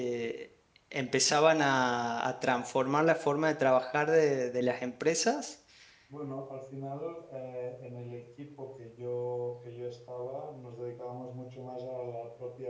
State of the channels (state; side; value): identical; both; correlation 1.00